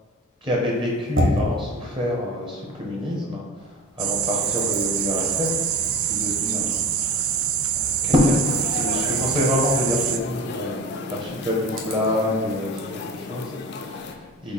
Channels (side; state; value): both; normal; correlation 0.35